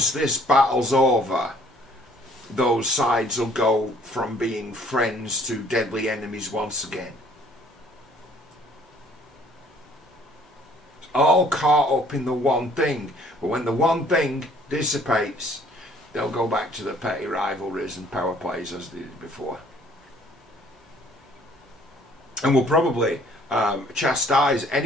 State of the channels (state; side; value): normal; both; correlation 0.58